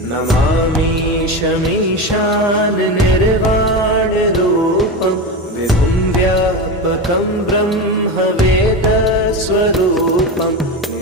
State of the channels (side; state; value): both; normal; correlation 0.20